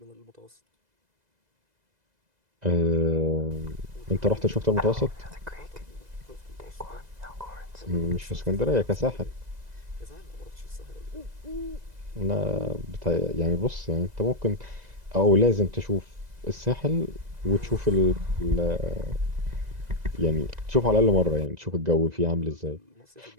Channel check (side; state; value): left; late; 2.0 ms